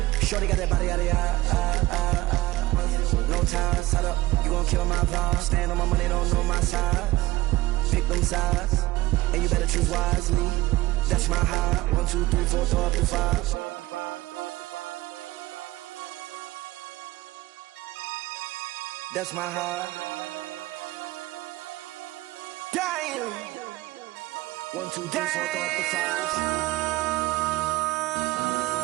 Shorty got that body out of ya. No ties, shut up. You gon' kill my vibe. Stand on my money, don't know my size. Pick them sides, and you better choose wisely. That's my high. 1, 2, 3, 4, throw up to 5. That's my high. Damn. 1, 2, 3, 4, throw up to 5.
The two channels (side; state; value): left; quieter; 18.0 dB